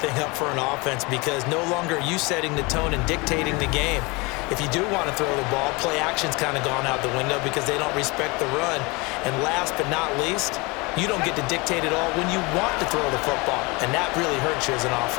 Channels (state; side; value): quieter; right; 26.1 dB